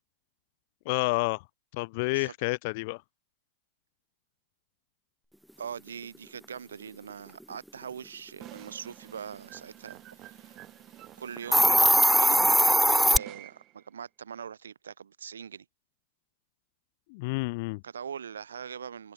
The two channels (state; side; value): normal; both; correlation 0.77